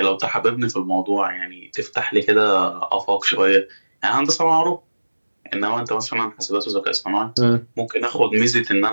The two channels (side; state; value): both; inverted; correlation -1.00